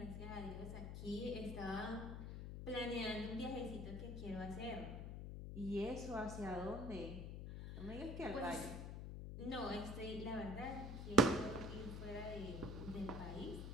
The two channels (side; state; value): left; noise; hum, 6 dB below the sound